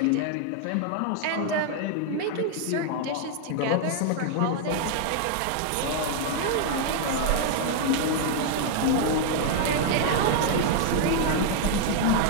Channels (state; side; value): different; both; correlation 0.00